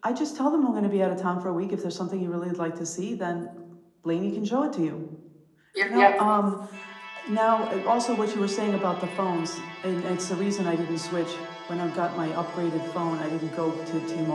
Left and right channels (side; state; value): both; identical; correlation 1.00